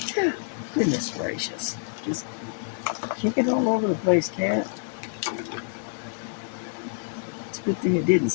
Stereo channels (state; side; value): silent; right; 60 dB below the other